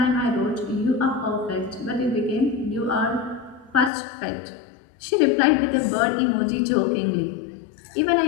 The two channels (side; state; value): right; drops out; at 3.9 s